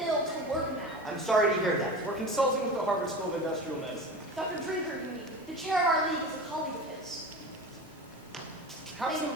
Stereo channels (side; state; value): both; normal; correlation 0.31